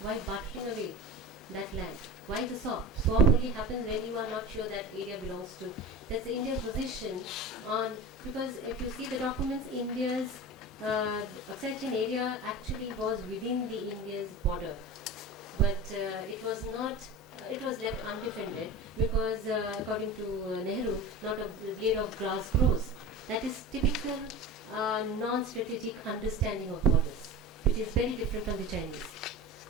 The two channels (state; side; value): normal; both; correlation 0.31